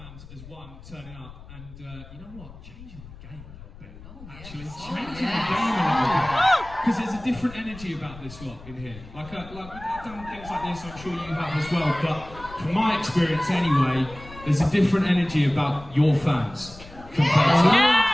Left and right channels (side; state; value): left; noise; rumble, 17 dB below the sound